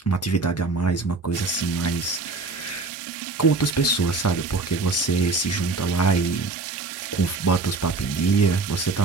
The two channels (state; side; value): quieter; left; 3.7 dB